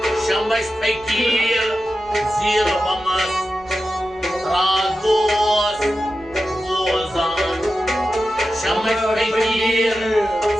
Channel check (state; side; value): noise; right; rumble, 24 dB below the sound